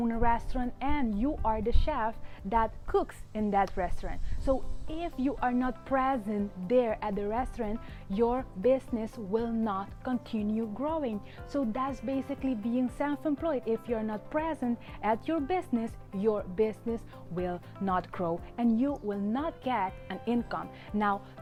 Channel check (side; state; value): both; identical; correlation 1.00